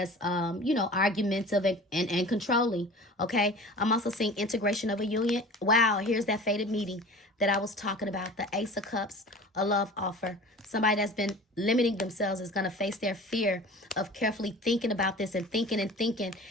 you know, argumentative and controlling, okay? I'm also seeing integration of a union. Wow, here's that fated meeting that I was talking about, the Ace of Cups, a love offer. Somebody that's been limiting themselves is going to face their fear of carefully thinking about this and thinking.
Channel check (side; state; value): both; normal; correlation 0.40